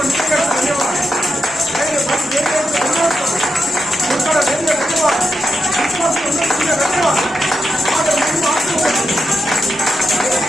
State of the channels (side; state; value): both; normal; correlation 0.86